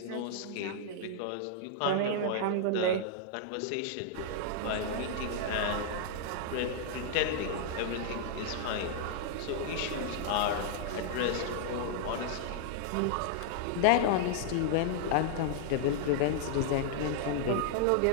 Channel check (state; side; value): different; both; correlation -0.01